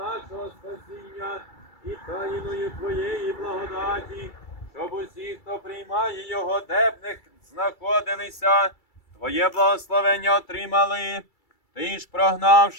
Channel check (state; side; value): late; right; 2.3 ms